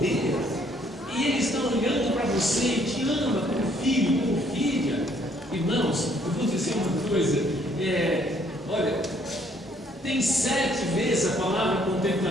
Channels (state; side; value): normal; both; correlation 0.65